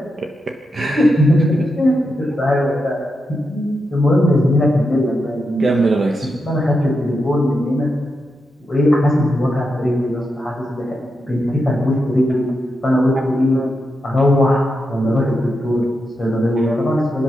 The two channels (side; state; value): both; normal; correlation 0.86